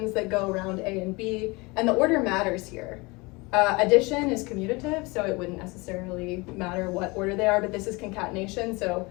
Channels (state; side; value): quieter; right; 25.5 dB